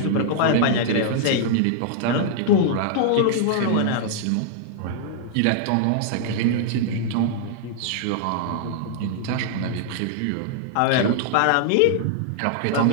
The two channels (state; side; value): different; both; correlation -0.01